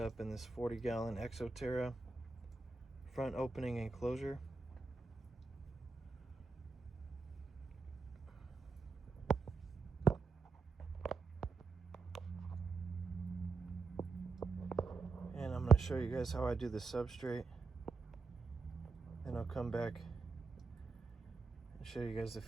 in this 40-gallon Enclosure front opening enclosure. And I'm going to show you guys how I do the substrate. Then I'll come back and show you guys the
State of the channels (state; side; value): quieter; left; 4.1 dB